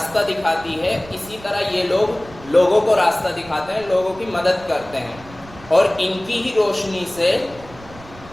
दिखाती है, इसी तरह ये लोग लोगों को रास्ता दिखाते हैं, लोगों की मदद करते हैं, और इनकी ही रोशनी से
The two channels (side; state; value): right; noise; rumble, 20 dB below the sound